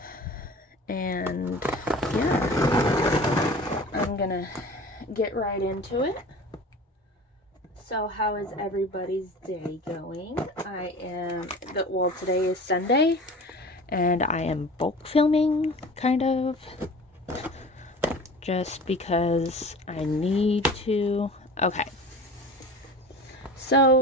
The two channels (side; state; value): both; normal; correlation 0.38